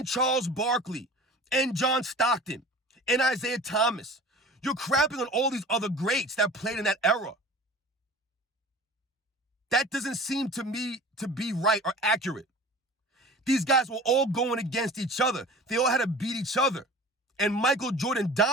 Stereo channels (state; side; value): normal; both; correlation 0.41